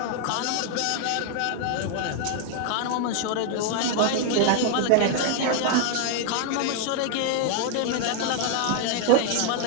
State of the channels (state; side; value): different; both; correlation 0.00